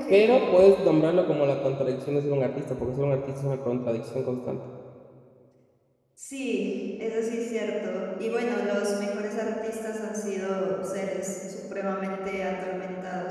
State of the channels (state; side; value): identical; both; correlation 1.00